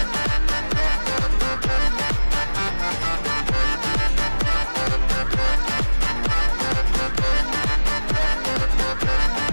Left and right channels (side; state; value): both; inverted; correlation -1.00